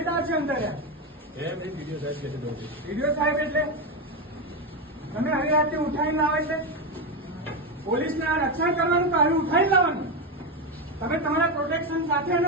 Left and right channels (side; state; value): both; normal; correlation 0.12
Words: છે અંદર. વિડીયો સાહેબ એટલે તમે આવી રાતે ઉઠાઈને લાવે છે. પોલીસને આ રક્ષણ કરવાનું તો આવી ઉઠાઈને લાવવાનું. તમે તમારા પ્રોટેક્શન સાથે